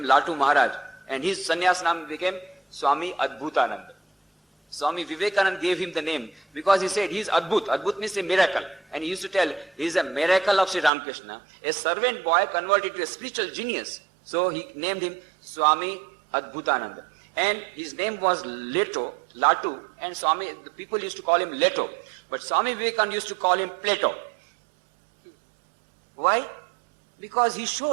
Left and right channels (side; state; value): left; drops out; at 10.9 s